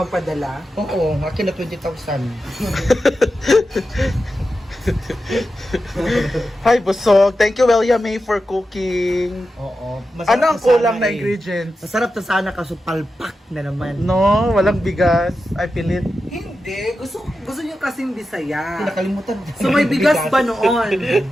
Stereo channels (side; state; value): both; normal; correlation 0.90